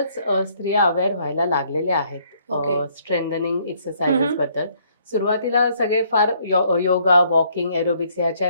स्त्रिया अवेअर व्हायला लागलेल्या आहेत ओके. स्ट्रेंथनिंग एक्सरसाइजेस बद्दल. सुरुवातीला सगळे फार योगा, वॉकिंग, एरोबिक्स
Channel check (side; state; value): both; inverted; correlation -0.66